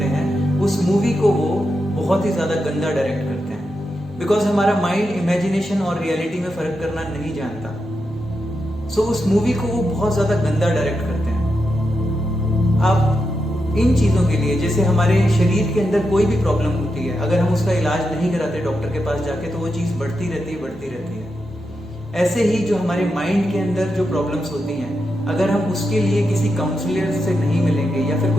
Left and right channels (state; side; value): normal; both; correlation 0.86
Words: हैं, उस मूवी को वो बहुत ही ज्यादा गंदा डायरेक्ट करते हैं, बिकॉज हमारा माइंड इमेजिनेशन और रियलिटी में फर्क करना नहीं जानता। सो उस मूवी को वो बहुत ज्यादा गंदा डायरेक्ट करते हैं। आप इन चीजों के लिए, जैसे हमारे शरीर के अंदर कोई भी प्रॉब्लम होती है, अगर हम उसका इलाज नहीं कराते डॉक्टर के पास जाके, तो वो चीज बढ़ती रहती है। ऐसे ही जो हमारे माइंड के अंदर जो प्रॉब्लम्स होती हैं, अगर हम उसके लिए किसी काउंसलर से नहीं मिलेंगे या फिर